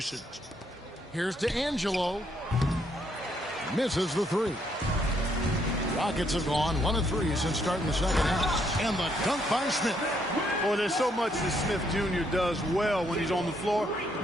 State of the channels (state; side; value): normal; both; correlation 0.72